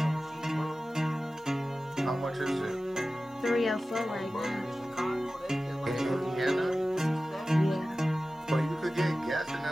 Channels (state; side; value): normal; both; correlation 0.95